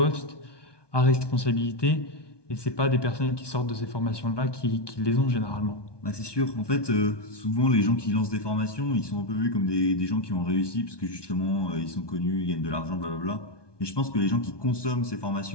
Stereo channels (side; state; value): right; late; 1.2 ms